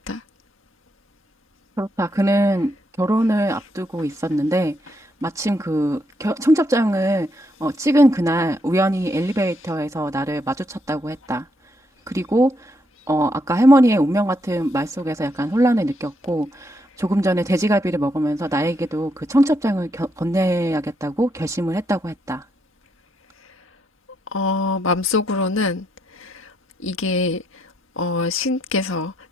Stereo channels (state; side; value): normal; both; correlation 0.77